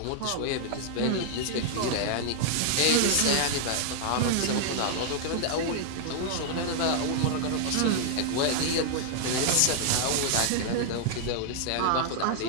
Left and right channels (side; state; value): both; different; correlation 0.00